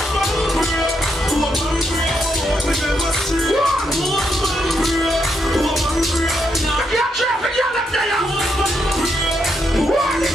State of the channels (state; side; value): normal; both; correlation 0.79